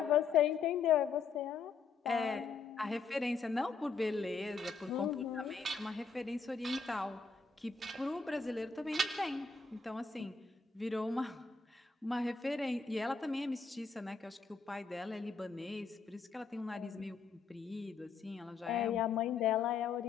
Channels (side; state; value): right; quieter; 5.1 dB